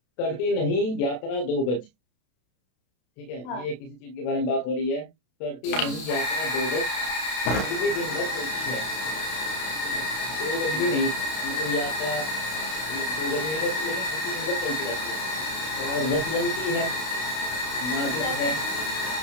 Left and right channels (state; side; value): late; right; 32 ms